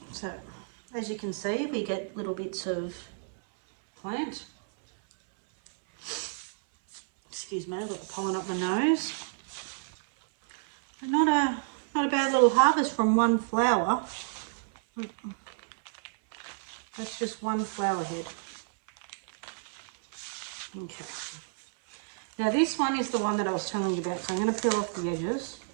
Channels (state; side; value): silent; left; 58 dB below the other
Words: So, as you can see, we get little bits of plant. Excuse me, I've got the pollen up my nose. But not a bad little harvest from one flower. That's just one flower head. Okay. Now this one is the one that I was telling you about, so I'm going to peel off the edges.